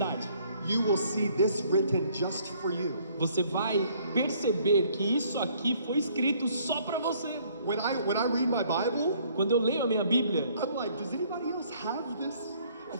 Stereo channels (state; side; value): inverted; both; correlation -0.62